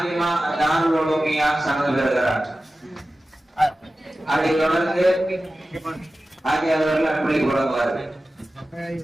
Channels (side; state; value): both; normal; correlation 0.95